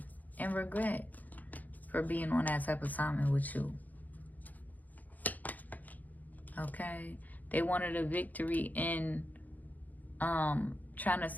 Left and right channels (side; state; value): right; late; 0.081 ms